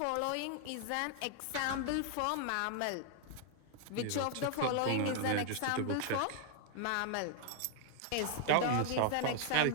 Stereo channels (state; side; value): different; both; correlation 0.00